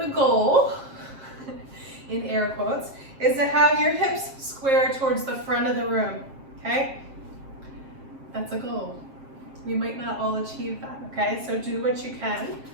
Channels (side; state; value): left; late; 7.5 ms